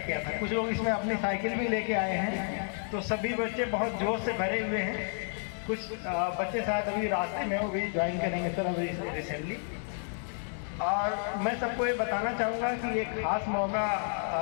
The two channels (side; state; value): right; silent; 57 dB below the other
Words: था। कुछ लोग इसमें अपनी साइकिल भी लेके आए हैं, तो सभी बच्चे बहुत जोश से भरे हुए हैं। कुछ बच्चे शायद अभी रास्ते में वो भी ज्वाइन करेंगे सर अभी रिसेंटली। और मैं सबको ये बताना चाहूँगा कि एक खास मौका